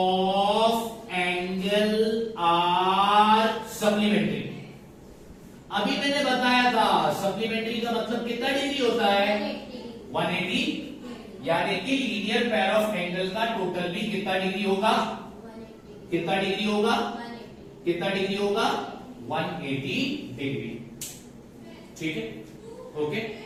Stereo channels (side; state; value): both; identical; correlation 1.00